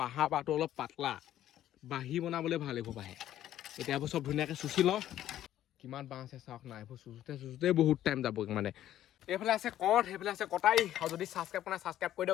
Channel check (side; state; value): right; quieter; 12.4 dB